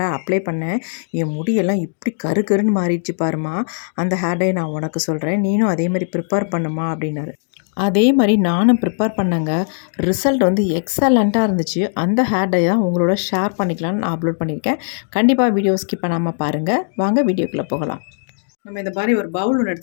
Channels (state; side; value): silent; right; digital silence